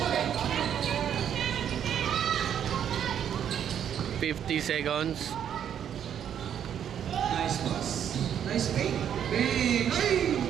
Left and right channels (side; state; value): left; quieter; 9.2 dB